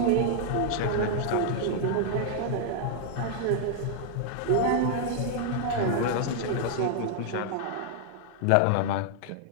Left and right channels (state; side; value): different; both; correlation 0.00